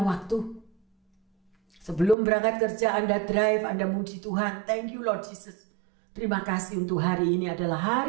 waktu. Sebelum berangkat kerja Anda drive, Anda muji Tuhan. Thank you Lord Jesus. Terima kasih untuk hari ini adalah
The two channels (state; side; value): drops out; left; at 2.1 s